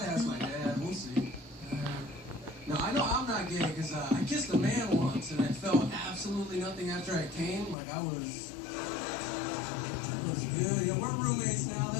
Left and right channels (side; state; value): right; drops out; at 7.8 s